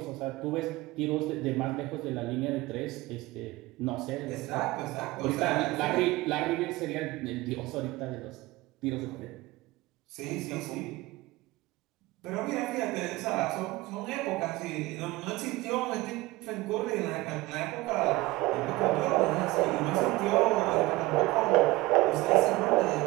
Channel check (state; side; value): quieter; left; 20.1 dB